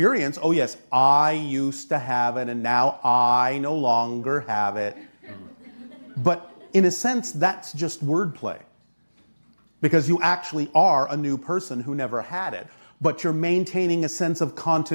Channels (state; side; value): inverted; both; correlation -1.00